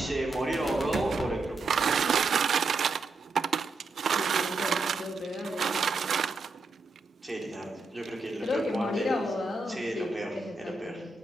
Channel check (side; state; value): left; quieter; 3.4 dB